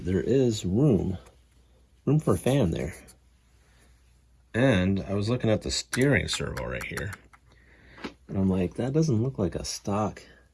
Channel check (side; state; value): both; identical; correlation 1.00